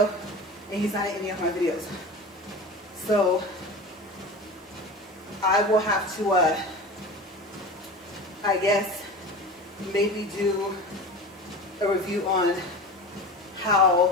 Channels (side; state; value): both; normal; correlation 0.32